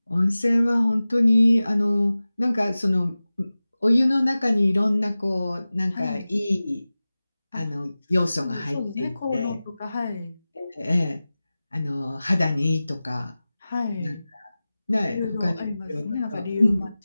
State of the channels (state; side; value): inverted; both; correlation -0.97